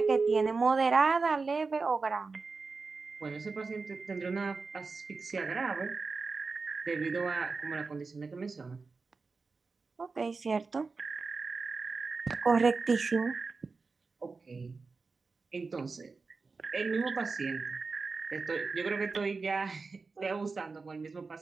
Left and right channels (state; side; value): quieter; left; 4.3 dB